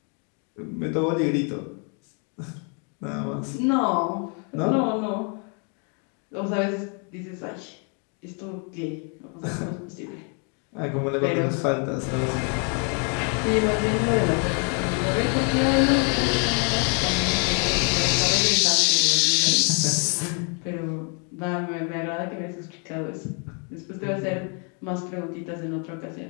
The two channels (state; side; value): quieter; right; 38.3 dB